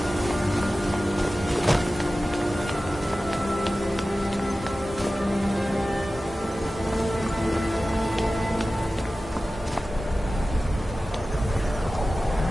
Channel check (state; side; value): normal; both; correlation 0.95